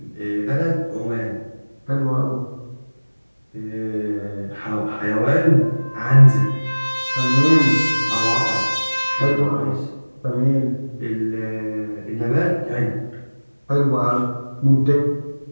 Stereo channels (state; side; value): inverted; both; correlation -1.00